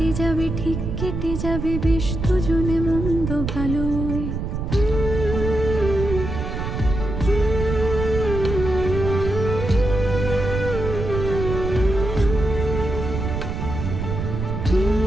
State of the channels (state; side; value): noise; right; rumble, 4 dB below the sound